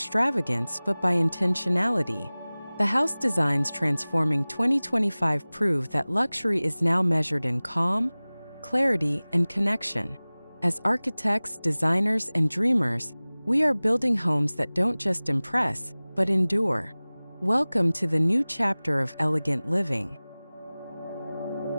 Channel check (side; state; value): both; inverted; correlation -0.99